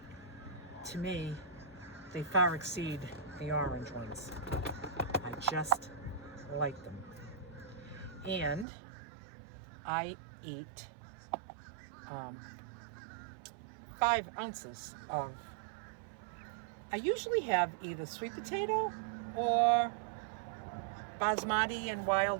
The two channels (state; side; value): drops out; left; at 8.7 s